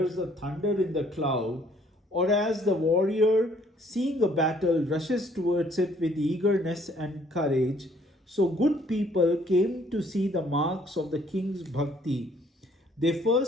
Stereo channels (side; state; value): both; normal; correlation 0.62